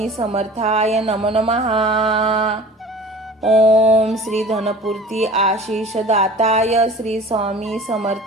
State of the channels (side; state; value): both; normal; correlation 0.42